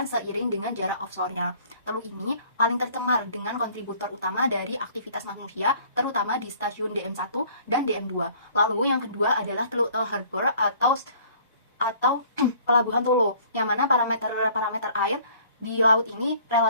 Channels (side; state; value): both; inverted; correlation -0.55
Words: seiring dengan jarak offshore-nya. Teluk ini paling tercemar dengan kontributor utama dari aktivitas manusia, terutama di stasiun DM1 dan DM2. Lalu yang kedua adalah Teluk Tel Harbor atau Pelabuhan Tolo, yang mana parameter air di laut ini